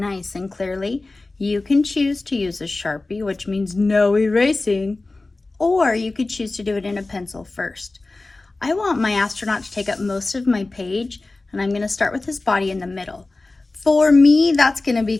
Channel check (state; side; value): quieter; right; 3.2 dB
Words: and clearly. You can choose to use a Sharpie, which means no erasing, or you could choose to do it in a pencil first. I want my astronaut to take up most of my page, and I'm going to start with his body in the middle. For me, that's going to be